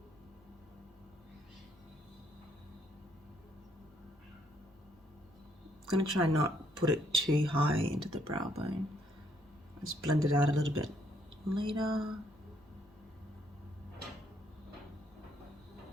I'm going to try not put it too high into the brow bone. Just blend it out a little bit later.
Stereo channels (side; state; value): both; normal; correlation 0.70